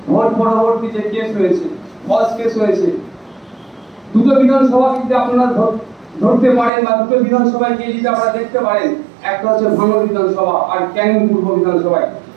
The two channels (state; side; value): drops out; left; at 6.7 s